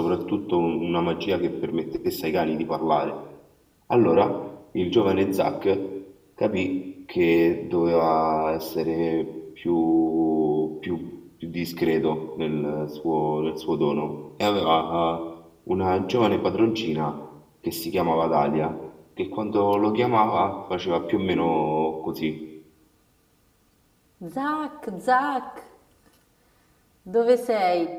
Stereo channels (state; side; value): identical; both; correlation 1.00